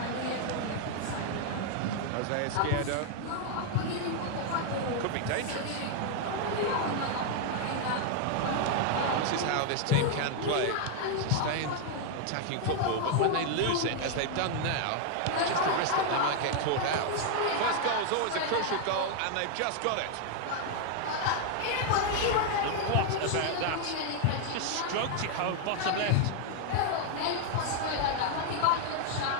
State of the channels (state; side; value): different; both; correlation 0.00